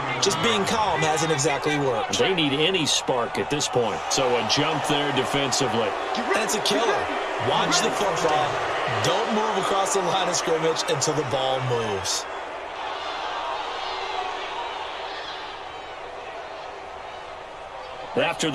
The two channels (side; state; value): both; identical; correlation 1.00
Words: just being calm hasn't exactly worked. They need any spark at this point. So a jump there defensively. That's a killer. Watch the football. Don't move across the line of scrimmage until the ball moves. After